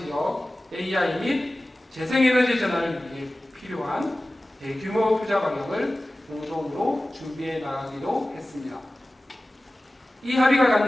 AI 및 재생에너지 전환을 위해 필요한 대규모 투자 방향을 공동으로 준비해 나가기로 했습니다. 이 합의가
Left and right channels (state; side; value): normal; both; correlation 0.96